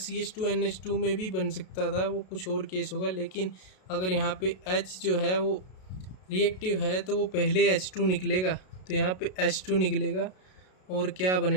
में भी बन सकता था, वो कुछ और केस होगा। लेकिन अगर यहाँ पे H जो है वो रिएक्टिव है, तो वो पहले H2 निकलेगा, तो यहाँ पे H2 निकलेगा, और क्या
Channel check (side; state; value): right; late; 32 ms